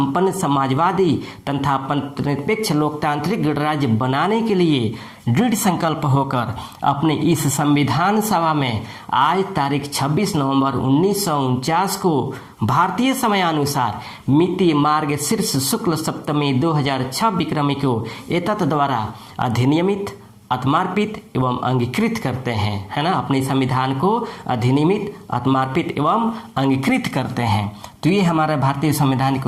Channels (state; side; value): identical; both; correlation 1.00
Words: समाजवादी तथा निरपेक्ष लोकतांत्रिक गणराज्य बनाने के लिए दृढ़ संकल्प होकर अपने इस संविधान सभा में आज तारीख 26 नवंबर 1949 को भारतीय समयानुसार मिति मार्ग शीर्ष शुक्ल सप्तमी 2006 विक्रमी को एतत् द्वारा अधिनियमित, आत्मार्पित एवं अंगीकृत करते हैं, है ना। अपने संविधान को अधिनियमित, आत्मार्पित एवं अंगीकृत करते हैं। तो ये हमारा भारतीय संविधान की